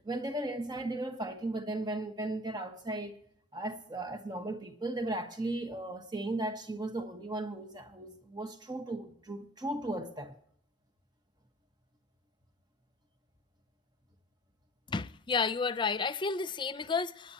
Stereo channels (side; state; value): both; normal; correlation 0.44